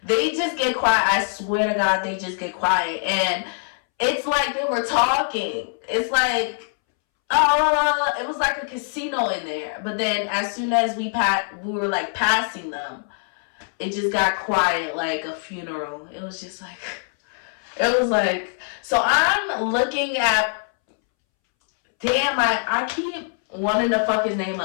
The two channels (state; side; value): silent; right; 63 dB below the other